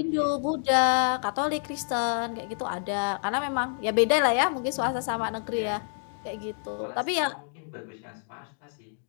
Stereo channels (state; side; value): silent; right; digital silence